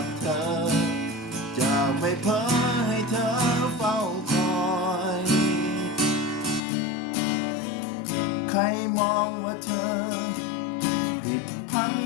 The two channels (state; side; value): drops out; right; at 6.6 s